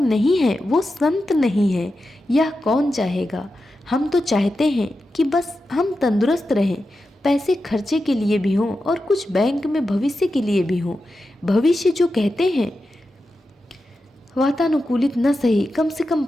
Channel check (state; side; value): normal; both; correlation 0.90